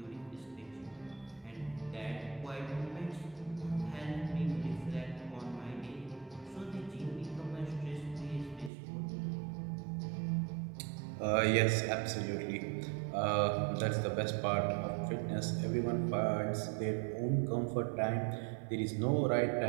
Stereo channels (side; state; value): left; drops out; at 8.7 s